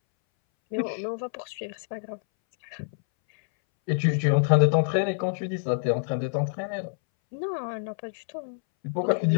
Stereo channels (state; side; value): silent; right; 60 dB below the other